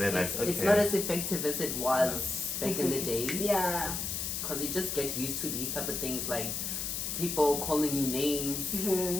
like okay. It's not as effective as it was back in the day. Yeah. Because you just get used to these type of things, like people calling you names.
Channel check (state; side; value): noise; left; hiss, 2 dB below the sound